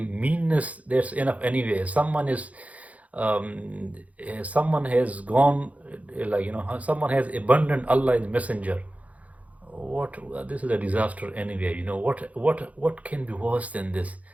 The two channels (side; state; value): left; late; 0.069 ms